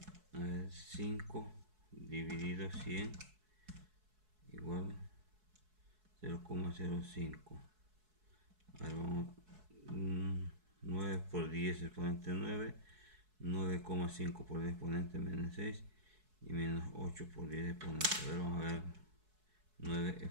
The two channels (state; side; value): late; left; 4.7 ms